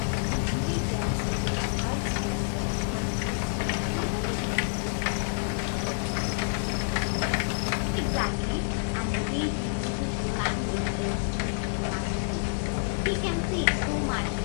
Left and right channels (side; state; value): right; silent; 59 dB below the other